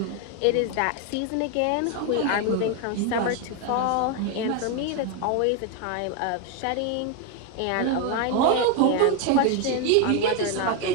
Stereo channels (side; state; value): both; different; correlation 0.01